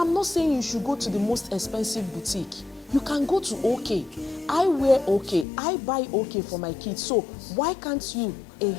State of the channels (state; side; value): drops out; right; at 5.5 s